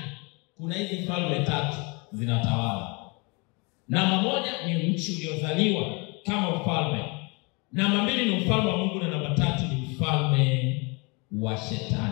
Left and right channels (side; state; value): right; quieter; 30.0 dB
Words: kuna hizi falme tatu zinatawala. Namba moja ni nchi uliozaliwa kama ufalme. Namba mbili ni ufalme wa Mungu, na namba tatu ni ufalme wa